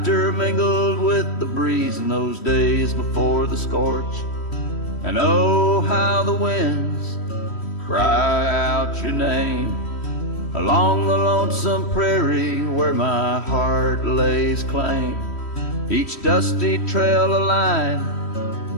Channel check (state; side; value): late; right; 3.1 ms